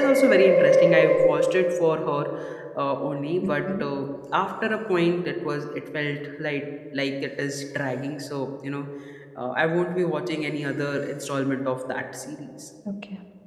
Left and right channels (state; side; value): identical; both; correlation 1.00